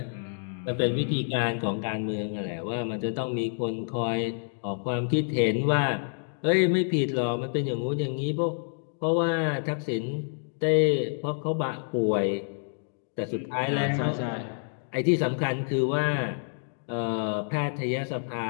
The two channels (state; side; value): silent; right; digital silence